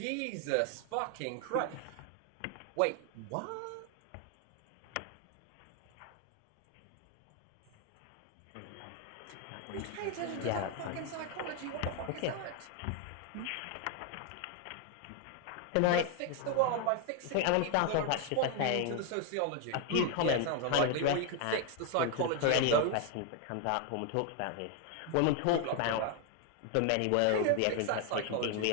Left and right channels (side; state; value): both; different; correlation 0.00